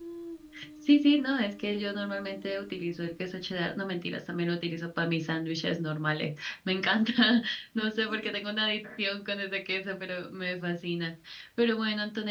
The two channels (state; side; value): identical; both; correlation 1.00